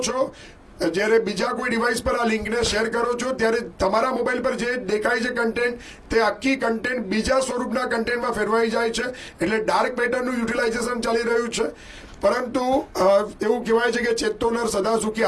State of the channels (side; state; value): both; identical; correlation 1.00